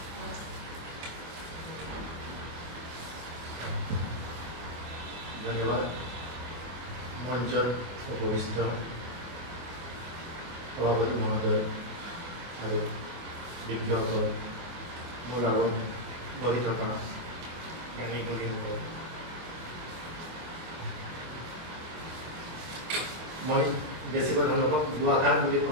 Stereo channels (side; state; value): left; late; 24 ms